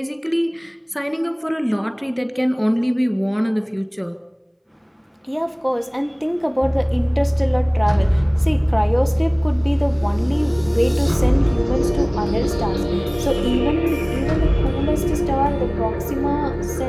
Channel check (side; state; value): both; identical; correlation 1.00